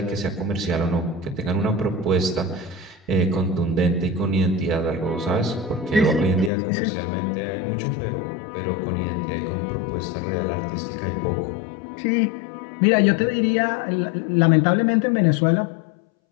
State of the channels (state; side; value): drops out; right; at 6.5 s